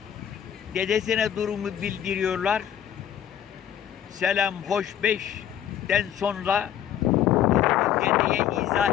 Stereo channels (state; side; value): quieter; right; 10.1 dB